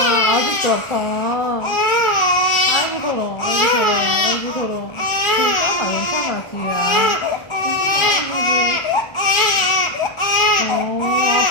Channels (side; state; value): right; late; 1.4 ms